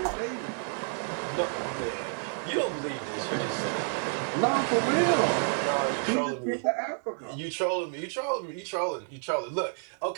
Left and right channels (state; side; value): silent; left; 58 dB below the other